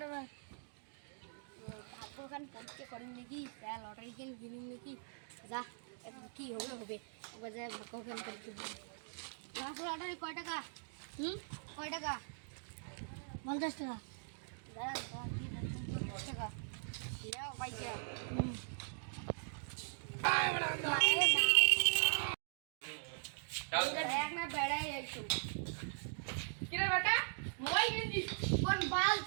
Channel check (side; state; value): left; silent; digital silence